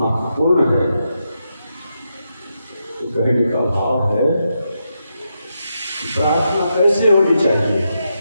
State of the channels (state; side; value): inverted; both; correlation -0.84